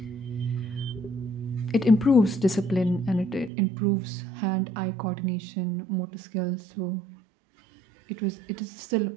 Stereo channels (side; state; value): left; drops out; at 3.5 s